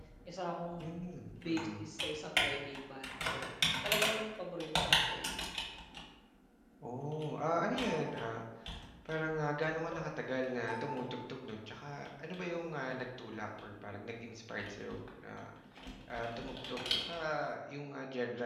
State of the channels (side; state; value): both; identical; correlation 1.00